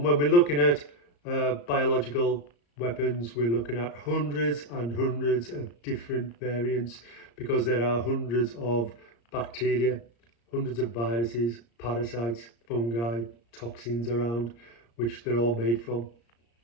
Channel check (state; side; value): late; right; 34 ms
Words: when we're looking at biological weapons, we're looking at hundreds and hundreds of different variants because there are hundreds of bacteria, hundreds of viruses, parasites, fungi, toxins around, which they're all made from.